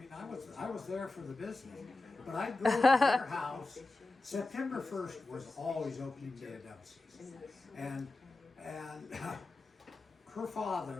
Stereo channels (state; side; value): quieter; right; 3.1 dB